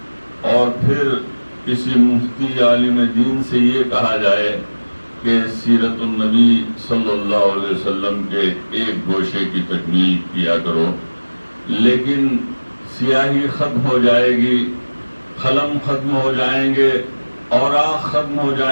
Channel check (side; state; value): both; inverted; correlation -1.00